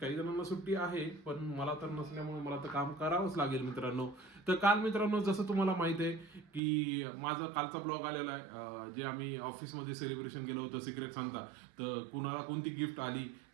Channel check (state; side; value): drops out; left; at 6.6 s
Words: काही जणांना सुट्टी आहे, पण मला तर नसल्यामुळे मला तर काम करावंच लागेल मित्रांनो. तर काल मित्रांनो, जसं तुम्हाला माहिती आहे की माझा कालचा ब्लॉग आलेला आहे, जे आम्ही ऑफिसमध्ये सेलिब्रेशन केलं होतं सिक्रेट सांता. तर कुणाला कोणती गिफ्ट आली,